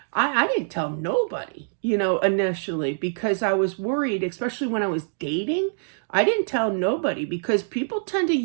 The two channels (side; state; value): left; silent; digital silence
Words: I didn't tell nobody, initially, because I was worried, especially when I was dating. I didn't tell nobody because people tend to